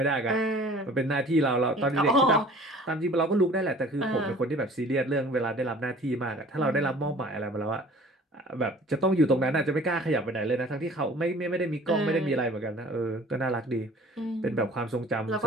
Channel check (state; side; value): normal; both; correlation 0.48